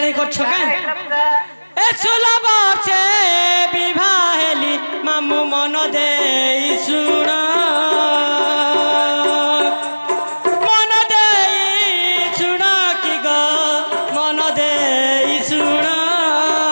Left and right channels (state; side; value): inverted; both; correlation -1.00